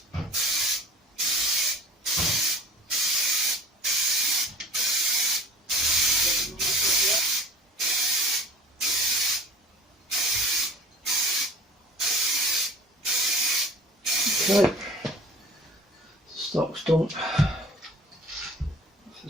Okay, stock's done. The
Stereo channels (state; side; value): normal; both; correlation 0.44